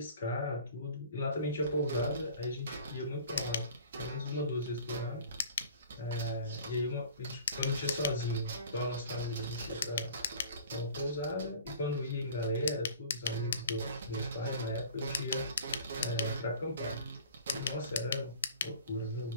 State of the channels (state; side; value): inverted; both; correlation -0.44